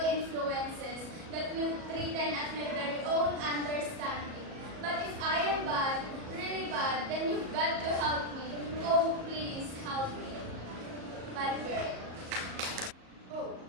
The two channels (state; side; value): late; left; 37 ms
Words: influences that will threaten at my very own understanding. But if I am bad, really bad, then you've got to help me. Oh, please help me. Bad girl. Oh,